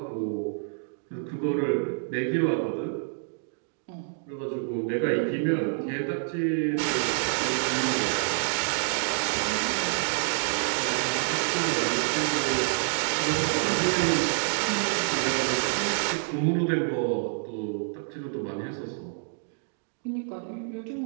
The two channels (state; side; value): silent; left; digital silence